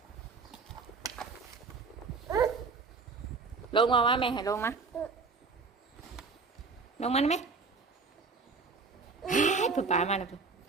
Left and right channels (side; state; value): left; quieter; 4.5 dB